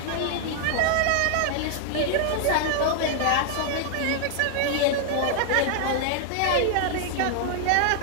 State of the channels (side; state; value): both; different; correlation 0.00